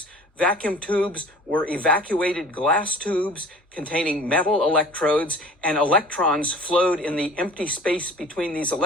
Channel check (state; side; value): normal; both; correlation 0.45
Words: Vacuum tubes were evacuated glass tubes containing metal electrodes, and electrons flowed in the empty space between these